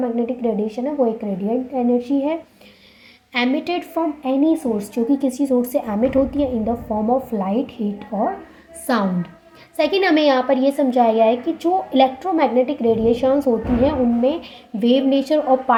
रेडिएशन है वो एक रेडिएंट एनर्जी है एमिटेड फ्रॉम एनी सोर्स, जो कि किसी सोर्स से एमिट होती है इन the form of light, heat और साउंड। सेकेंड, हमें यहाँ पर ये समझाया गया है कि जो इलेक्ट्रोमैग्नेटिक रेडिएशंस होती हैं उनमें वेव नेचर और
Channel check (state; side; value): identical; both; correlation 1.00